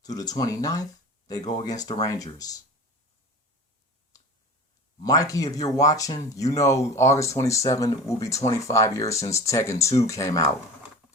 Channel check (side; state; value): both; normal; correlation 0.36